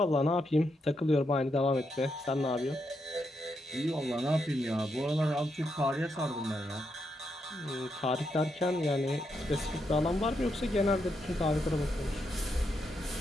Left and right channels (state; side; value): normal; both; correlation 0.81